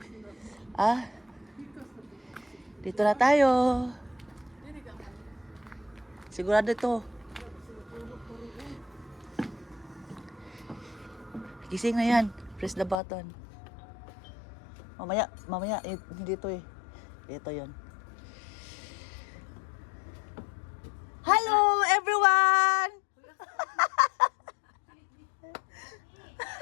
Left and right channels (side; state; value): right; drops out; at 13.0 s